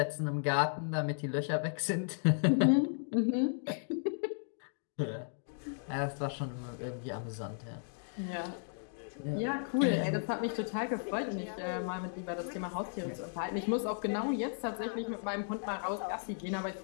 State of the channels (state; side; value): silent; right; digital silence